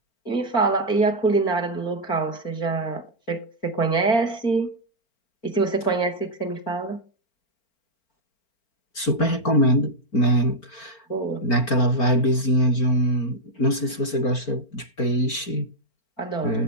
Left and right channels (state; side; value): late; right; 4.4 ms